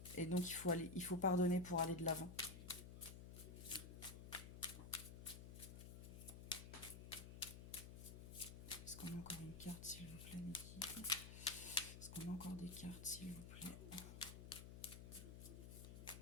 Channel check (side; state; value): left; noise; hum, 10 dB below the sound